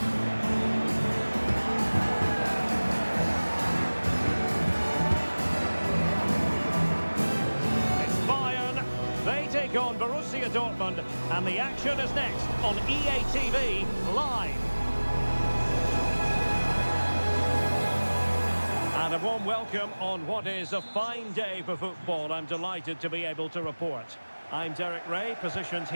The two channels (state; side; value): inverted; both; correlation -1.00